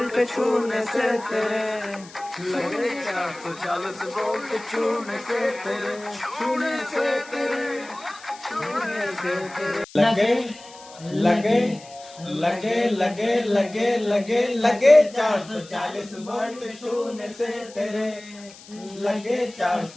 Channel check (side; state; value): left; noise; hiss, 20 dB below the sound